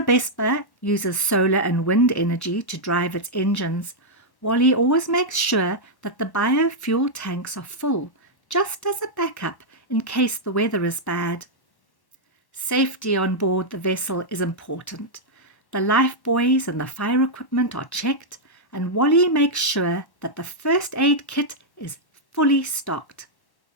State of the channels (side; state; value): right; late; 1.1 ms